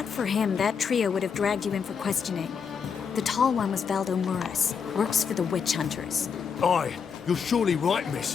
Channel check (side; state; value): right; quieter; 6.5 dB